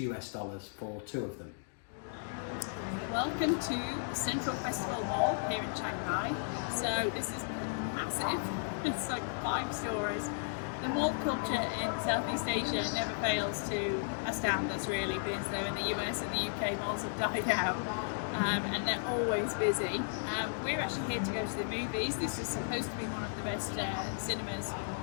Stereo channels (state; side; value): silent; right; digital silence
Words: for two of them. Welcome to Central Festival Mall here in Chiang Mai. So this is massive. It's like 5 stores. The mall culture in Southeast Asia never fails to astound us, really, because though in the US and the UK malls have died out, and they're always busy. We're actually here to go to the movies. This is supposed to be one of the best cinemas